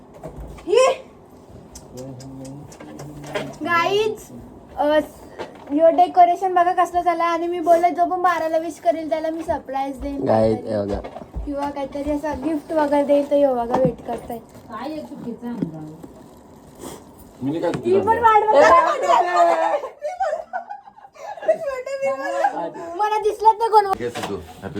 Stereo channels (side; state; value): both; identical; correlation 1.00